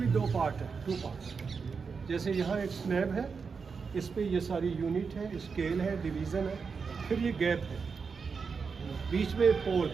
2 पार्ट है, 2 पार्ट। जैसे यहाँ एक स्लैब है, इस पे ये सारी यूनिट है, स्केल है, डिवीज़न है, फिर ये गैप है, बीच में पोल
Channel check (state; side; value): quieter; left; 5.4 dB